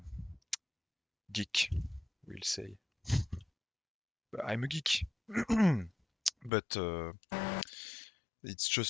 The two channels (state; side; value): drops out; right; at 6.5 s